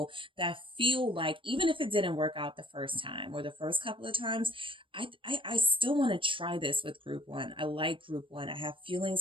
that feel like, even if it didn't work out the first time or the first couple of times, I still want to try this with Group 1. I like Group 1. I have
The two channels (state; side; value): late; left; 0.25 ms